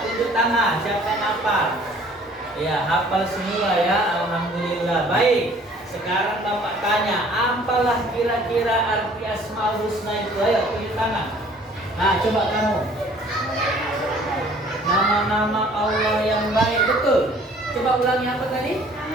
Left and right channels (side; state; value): both; normal; correlation 0.55